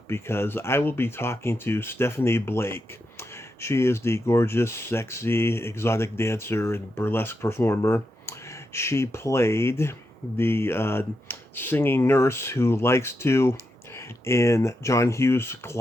because I will be talking to Stephanie Blake. She is the gorgeous, sexy, exotic dancer and burlesque performer. She played the singing nurse who likes to in John Hughes'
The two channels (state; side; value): normal; both; correlation 0.85